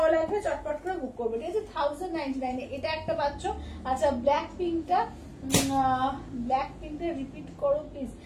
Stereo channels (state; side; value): identical; both; correlation 1.00